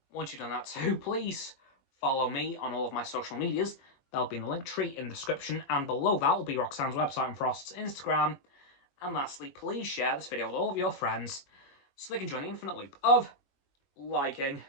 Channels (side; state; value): right; late; 22 ms